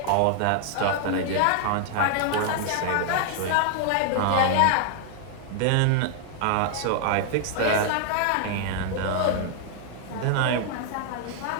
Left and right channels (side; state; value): both; different; correlation 0.00